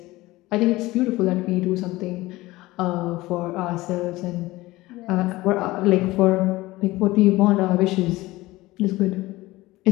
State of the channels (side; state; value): right; quieter; 19.0 dB